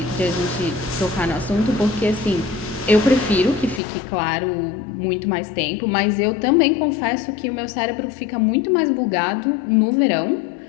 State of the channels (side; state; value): right; drops out; at 3.8 s